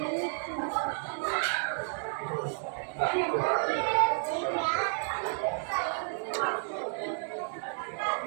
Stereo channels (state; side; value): silent; left; 57 dB below the other